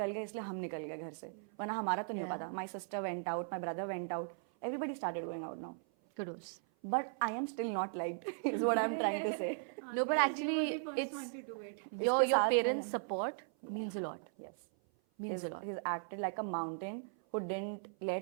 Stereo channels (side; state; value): left; silent; 53 dB below the other